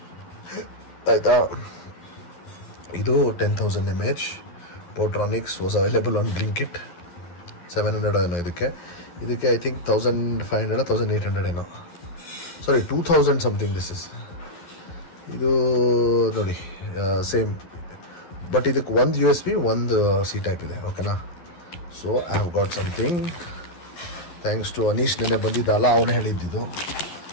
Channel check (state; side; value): late; right; 11 ms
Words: ಆಯಿತಾ. ಇದು 10,000 mAh. Portronics was available on Blinkit. 700 ಏನೋ ಇದಕ್ಕೆ ಐ ಥಿಂಕ್ 1,500 1,800 ಏನೋ. Sorry 2,000 something this is. ಇದು ನೋಡಿ ಸೇಮ್. ಬಟ್ ಇದಕ್ಕೆ ಒಂದು USB, ಒಂದು C ಟೈಪ್ ಇದೆ. ಓಕೆನಾ. So I have got something thanks to Anish. ನೆನೆ ಬಂದಿದ್ದಲ್ಲ, ಅವನು ಹೇಳಿದ್ದು.